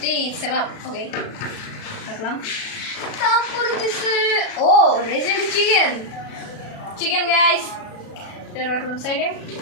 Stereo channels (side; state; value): right; late; 36 ms